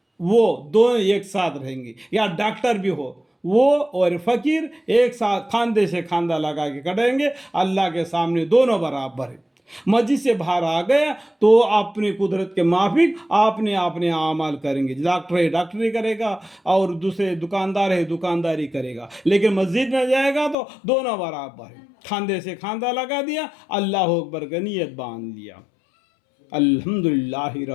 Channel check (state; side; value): drops out; right; at 20.6 s